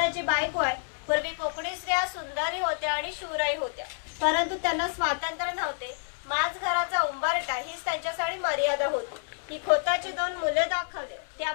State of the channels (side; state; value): right; silent; digital silence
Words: बायको आहे. पूर्वी कोकणी स्त्रिया सुंदरही होत्या आणि शूरही होत्या, परंतु त्यांना स्वातंत्र्य नव्हते. माझ घराचा उंबरठा हीच त्यांच्यासाठी मर्यादा होती. ही खोताची 2 मुले दाखवले. ते